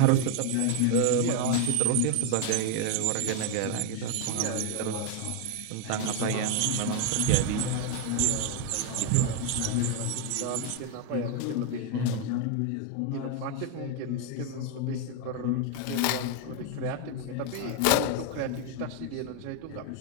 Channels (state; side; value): different; both; correlation 0.01